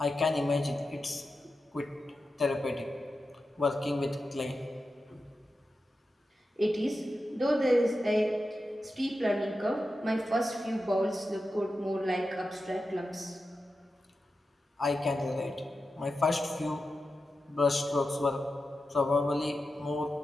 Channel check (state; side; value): normal; both; correlation 0.91